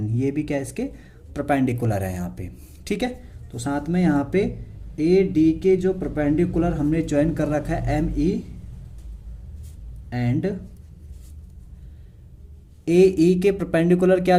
ये भी क्या इसके परपेंडिकुलर है यहाँ पे, ठीक है। तो साथ में यहाँ पे ए डी के जो परपेंडिकुलर हमने ज्वाइन कर रखा है एम ई एंड ए ई के परपेंडिकुलर क्या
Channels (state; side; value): identical; both; correlation 1.00